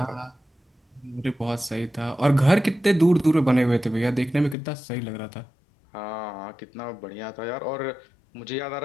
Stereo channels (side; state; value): right; drops out; at 4.5 s